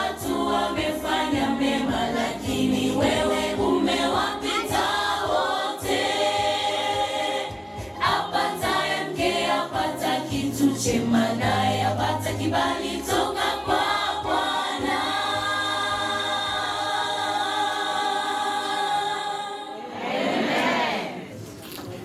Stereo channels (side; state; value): both; identical; correlation 1.00